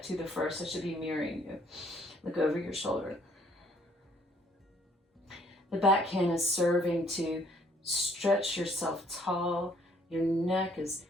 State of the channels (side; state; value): both; normal; correlation 0.63